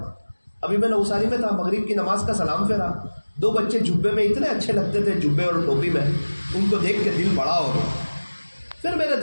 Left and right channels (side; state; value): both; inverted; correlation -1.00